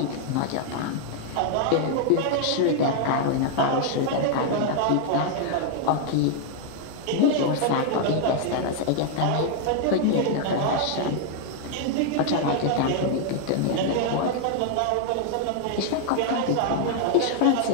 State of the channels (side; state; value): both; different; correlation 0.00